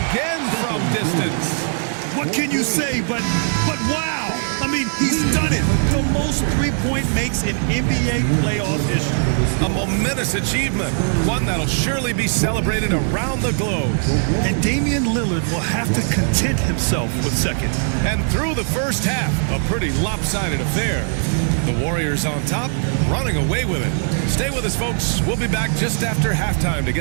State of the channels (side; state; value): left; silent; digital silence